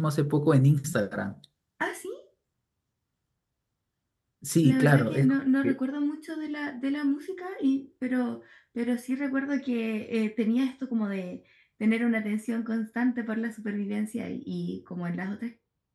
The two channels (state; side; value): identical; both; correlation 1.00